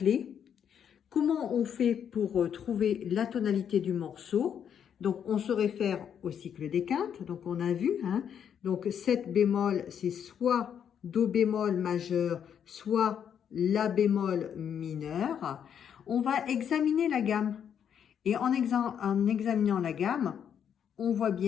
comment on fait pour trouver la tonalité du morceau? Donc on se réfère au cycle des quintes, donc on a vu, hein, donc 7 bémols, c'est soit do bémol majeur, soit la bémol mineur. On va examiner la gamme. Et en examinant la gamme, on voit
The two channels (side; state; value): right; quieter; 8.4 dB